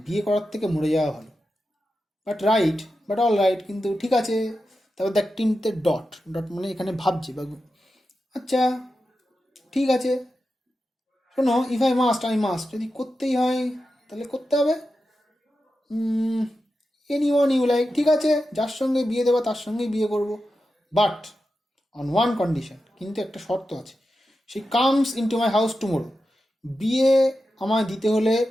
বিয়ে করার থেকে মরে যাওয়া ভালো। বাট অল রাইট, কিন্তু ঠিক আছে। তারপর দেখ তিনটে ডট মানে এখানে ভাবছে বা আচ্ছা ঠিক আছে। শোনো, ইফ আই মাস্ট, যদি করতেই হয় তাহলে করতে হবে। এনিওয়ান ইউ লাইক, ঠিক আছে, যার সঙ্গে বিয়ে দেবো তার সঙ্গেই বিয়ে করব, বাট অন ওয়ান কন্ডিশন, কিন্তু একটা শর্ত আছে। She comes into my house tomorrow, বিয়ে আমায় দিতে হলে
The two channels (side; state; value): both; normal; correlation 0.91